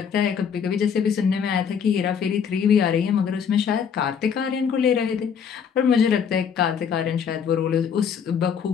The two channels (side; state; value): right; quieter; 7.2 dB